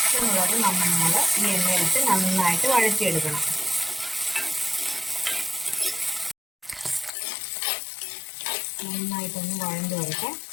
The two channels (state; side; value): drops out; right; at 7.1 s